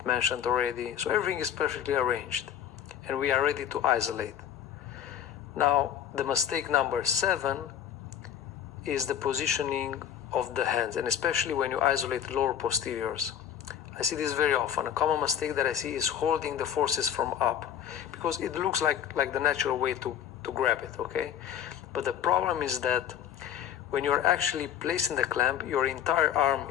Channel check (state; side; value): quieter; right; 9.6 dB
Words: mentioned already, so everything is perfectly arranged and we are ready to isolate. Now, the mistake number 7 is the positioning of the hands, and especially when you isolate lower posteriors. I see this very often. A common mistake that I see is holding the forceps from up, because it looks like the natural way to grab it, okay? But the problem is that when you're actually placing the clamp, your entire arm